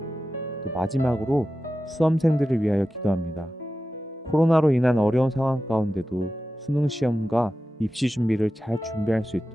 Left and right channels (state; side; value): normal; both; correlation 0.93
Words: 또 마지막으로 수험생들을 위하여 기도합니다. 코로나로 인한 어려운 상황 가운데도 수능 시험과 입시 준비를 잘 준비할 수